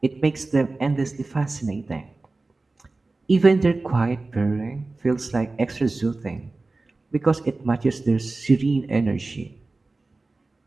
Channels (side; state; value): left; quieter; 3.4 dB